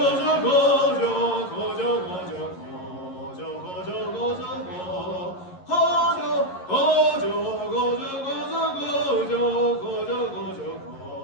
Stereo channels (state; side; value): late; right; 11 ms